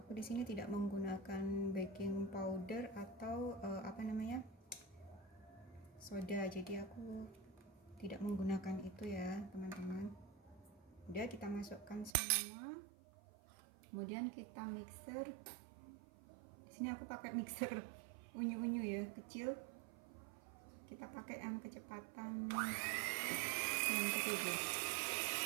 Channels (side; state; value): left; drops out; at 12.2 s